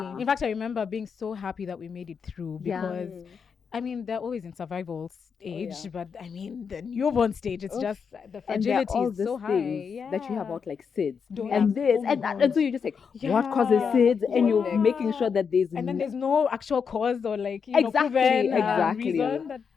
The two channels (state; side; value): quieter; right; 6.2 dB